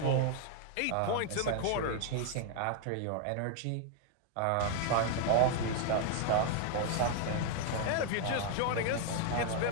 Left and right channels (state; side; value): different; both; correlation 0.00